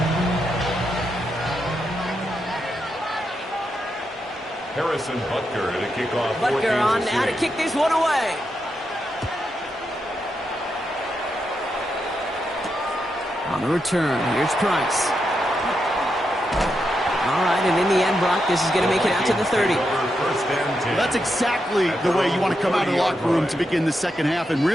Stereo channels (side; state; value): both; normal; correlation 0.84